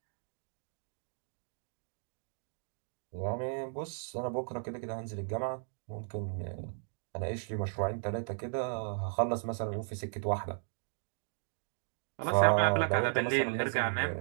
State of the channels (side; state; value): left; silent; digital silence